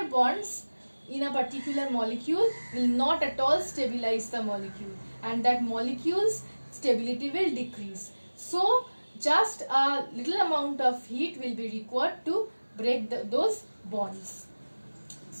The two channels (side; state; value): both; inverted; correlation -1.00